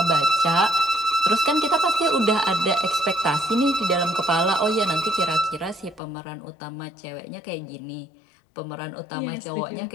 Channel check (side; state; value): right; drops out; at 6.0 s